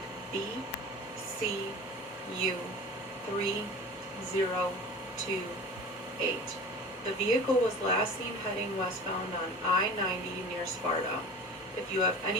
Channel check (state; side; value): normal; both; correlation 0.37